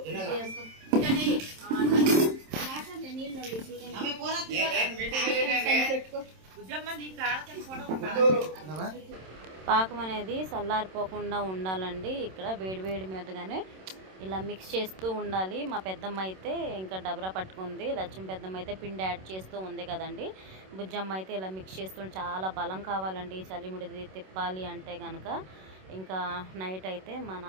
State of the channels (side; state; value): left; late; 27 ms